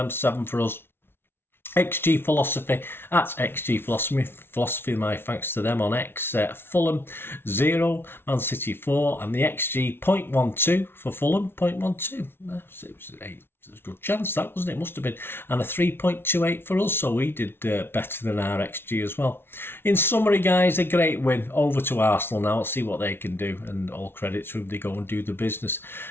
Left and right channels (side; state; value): right; late; 0.11 ms